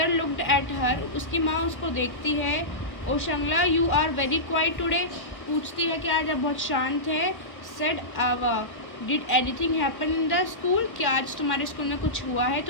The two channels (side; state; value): right; late; 1.2 ms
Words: looked at her. उसकी माँ उसको देखती है। Oshangla you are very quiet today. पूछती है कि आज आप बहुत शांत है। सेड आवा did anything happen in the school. क्या आज तुम्हारे स्कूल में कुछ हुआ है